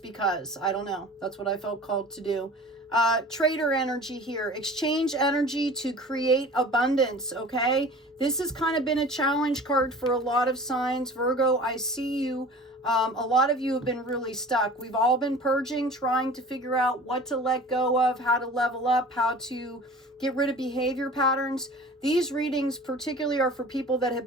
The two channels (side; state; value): both; normal; correlation 0.42